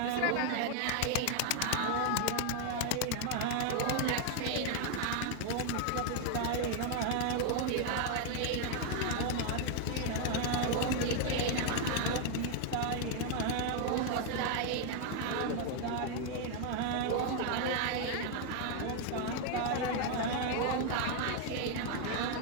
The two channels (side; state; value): both; different; correlation 0.01